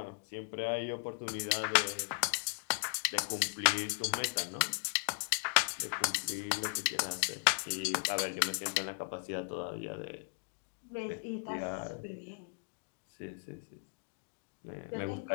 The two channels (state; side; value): silent; right; digital silence